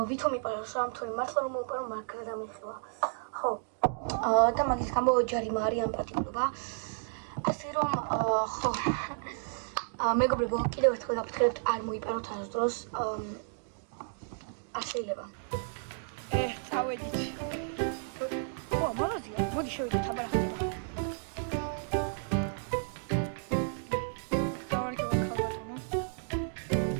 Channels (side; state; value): left; silent; digital silence